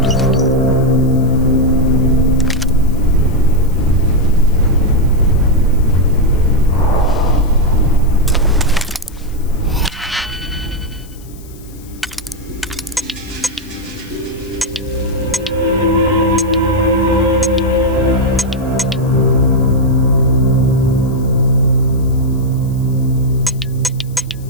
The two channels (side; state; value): left; noise; hiss, 24 dB below the sound